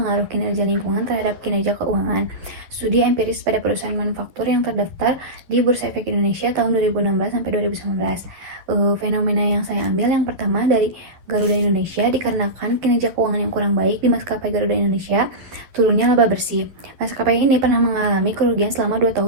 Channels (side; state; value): left; late; 11 ms